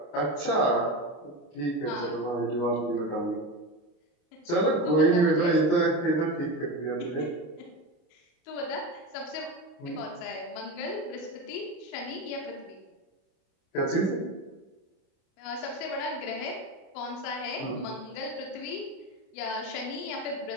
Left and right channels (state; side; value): late; right; 28 ms